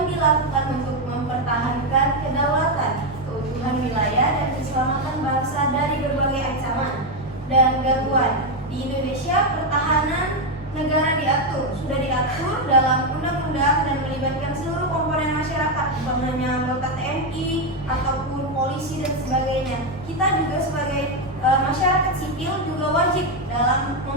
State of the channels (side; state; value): both; normal; correlation 0.06